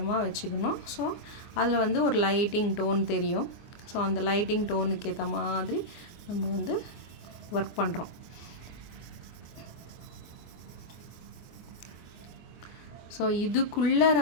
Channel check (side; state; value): right; late; 24 ms